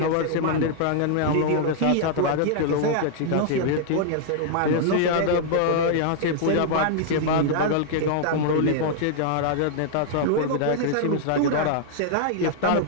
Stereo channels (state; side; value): different; both; correlation -0.01